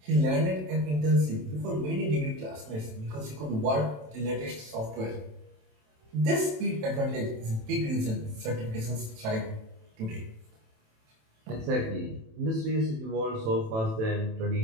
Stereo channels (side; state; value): left; late; 27 ms